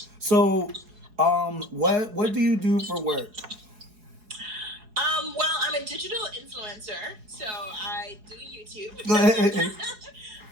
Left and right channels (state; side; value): late; left; 4.7 ms